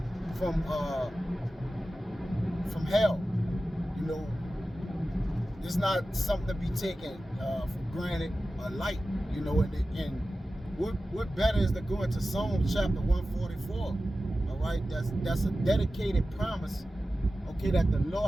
from hell. You know, it's not something to be taken for granted or light. You know, and what better is to go into Psalms chapter 144? All right, that's a dedicated promise. Okay, that the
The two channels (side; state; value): both; normal; correlation 0.94